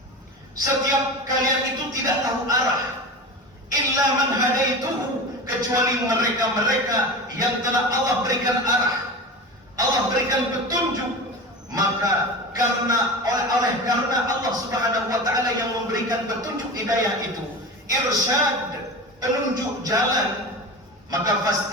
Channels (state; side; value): normal; both; correlation 0.29